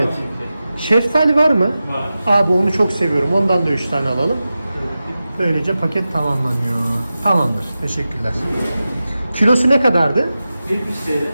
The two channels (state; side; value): inverted; both; correlation -0.94